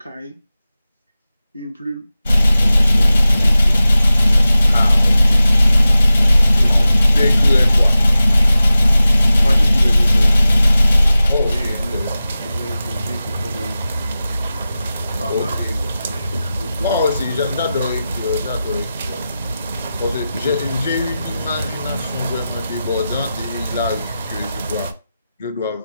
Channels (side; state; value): both; inverted; correlation -0.94